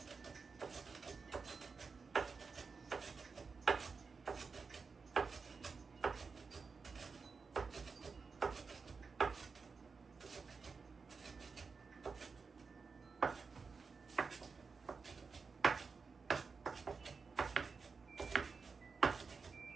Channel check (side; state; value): left; quieter; 4.9 dB